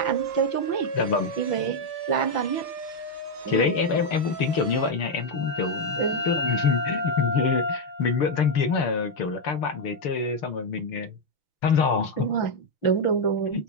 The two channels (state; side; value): late; right; 6.7 ms